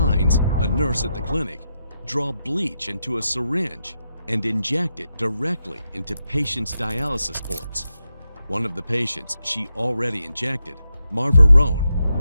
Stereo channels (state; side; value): inverted; both; correlation -0.85